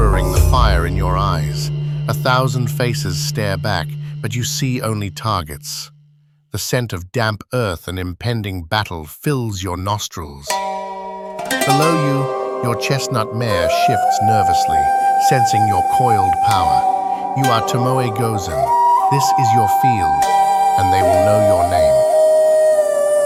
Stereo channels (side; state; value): both; identical; correlation 1.00